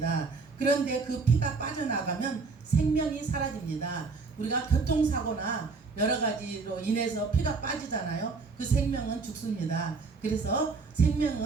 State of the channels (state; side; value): quieter; left; 4.4 dB